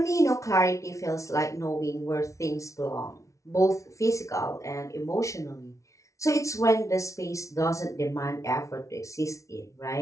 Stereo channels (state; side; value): late; right; 0.15 ms